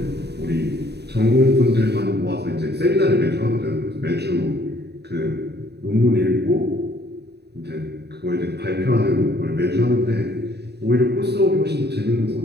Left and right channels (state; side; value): late; left; 0.48 ms